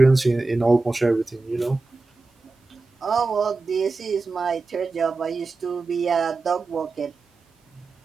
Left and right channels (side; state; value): left; quieter; 3.7 dB